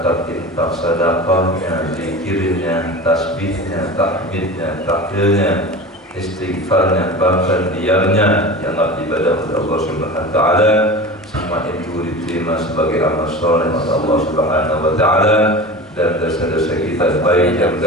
infak, sedekahnya, zikirnya, tasbihnya, tahmidnya, tahlilnya, istighfarnya, bahkan diamnya yang ibadah kepada Allah Subhanahu wa taala, semua itu diterima sebagai amal saleh oleh Allah Subhanahu wa taala, dan dosa-dosa kita baik yang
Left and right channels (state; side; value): normal; both; correlation 0.32